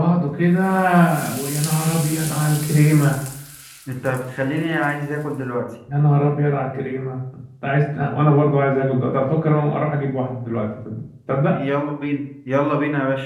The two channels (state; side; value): identical; both; correlation 1.00